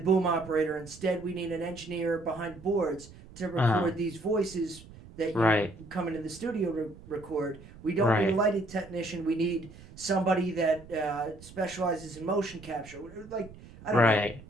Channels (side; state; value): right; noise; rumble, 19 dB below the sound